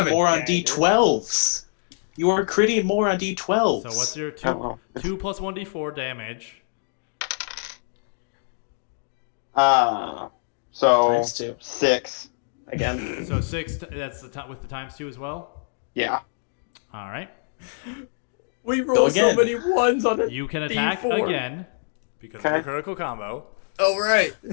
critting a more on dagger. D12s? You are critting more on D12s. So what's your Oh, well. 2 plus 1d4 damage? So Times 2. 6 again. So 6. That's with the times 2 as well. Yeah. All right. We roll so again. many ones on it. You can attack D4. again because of Okay. a critical combo. Oh right.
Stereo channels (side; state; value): right; silent; digital silence